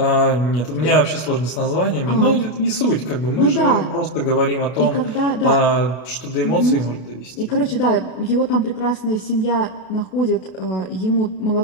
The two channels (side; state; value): right; late; 32 ms